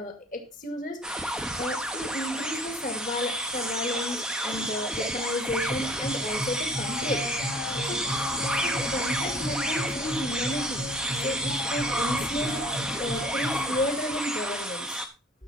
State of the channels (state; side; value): normal; both; correlation 0.49